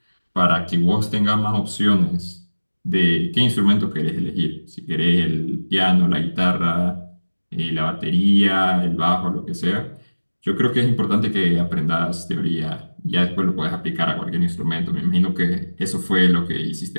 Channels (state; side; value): inverted; both; correlation -1.00